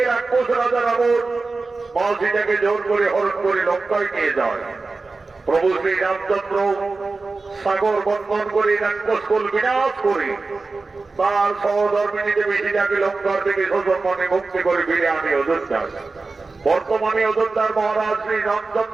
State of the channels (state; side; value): quieter; left; 3.8 dB